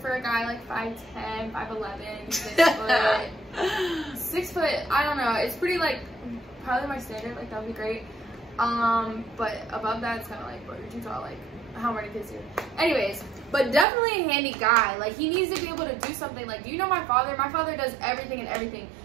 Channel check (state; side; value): drops out; left; at 13.9 s